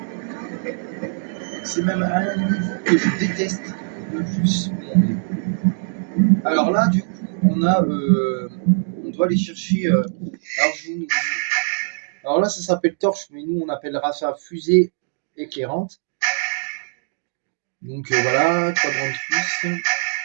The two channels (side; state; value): left; silent; digital silence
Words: C'est même un niveau que je déteste le plus. Alors là, du coup, on doit aller chercher. Alors là, ça s'appelle torche, mais nous, on appellera ça fusée éclairante. Donc voilà, quadrant de plus.